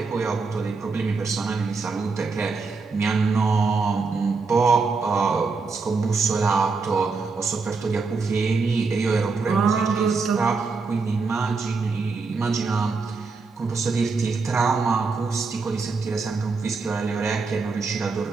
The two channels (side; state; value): left; quieter; 4.4 dB